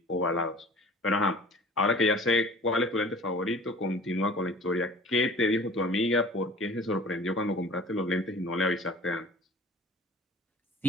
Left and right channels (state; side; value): normal; both; correlation 0.45